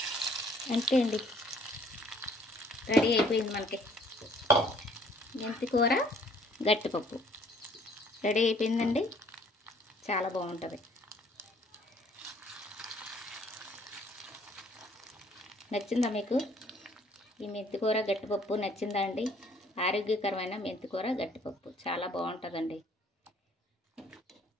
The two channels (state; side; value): normal; both; correlation 0.59